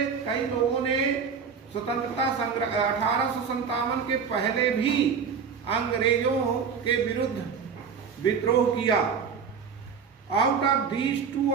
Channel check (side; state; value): left; quieter; 6.3 dB